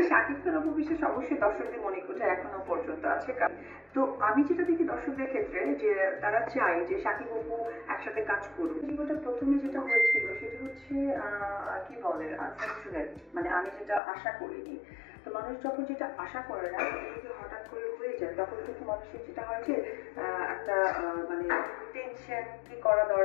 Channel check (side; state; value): right; drops out; at 14.0 s